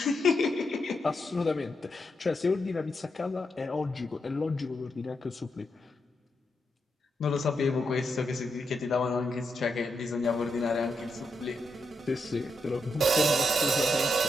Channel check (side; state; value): both; normal; correlation 0.83